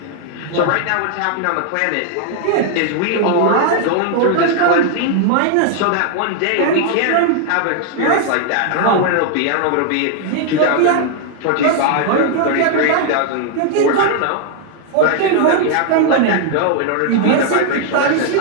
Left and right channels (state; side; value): different; both; correlation 0.00